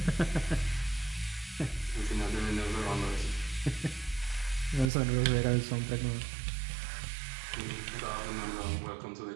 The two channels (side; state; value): left; drops out; at 4.9 s